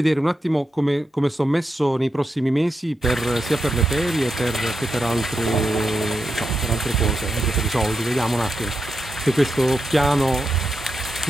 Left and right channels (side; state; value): both; normal; correlation 0.86